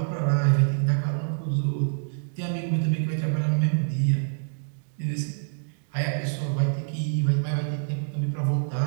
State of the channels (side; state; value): left; silent; digital silence